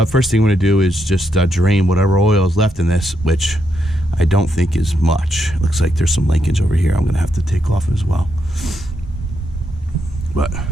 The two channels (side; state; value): both; normal; correlation 0.80